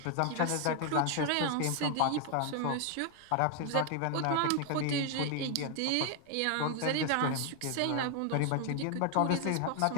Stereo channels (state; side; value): different; both; correlation 0.00